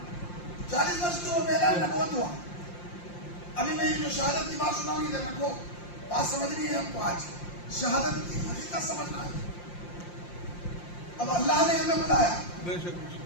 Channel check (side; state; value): right; late; 5.7 ms